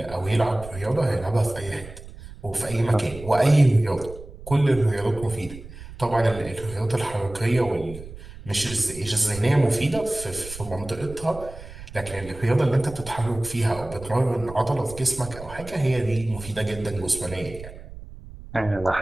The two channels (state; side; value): noise; right; rumble, 15 dB below the sound